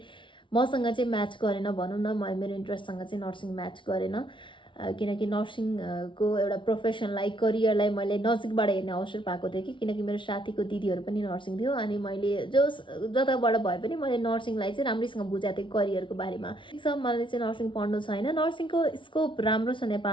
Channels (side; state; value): right; late; 0.24 ms